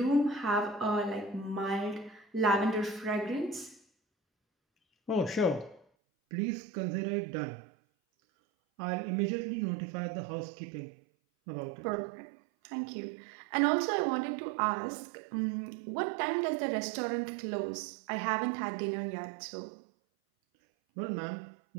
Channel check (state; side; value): drops out; left; at 5.9 s